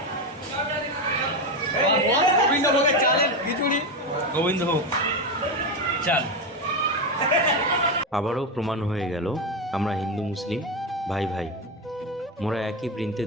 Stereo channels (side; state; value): both; normal; correlation 0.13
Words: গোবিন্দভোগ চাল। আবারও প্রমাণ হয়ে গেল আমরা হিন্দু মুসলিম ভাই ভাই, মোরা একই বৃন্তে